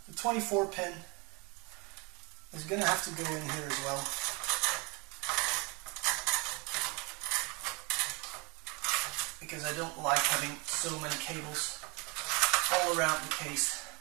The 24-pin is going to have to go in here as well. Because I don't like having so many cables all around the case.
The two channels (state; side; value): quieter; left; 29.3 dB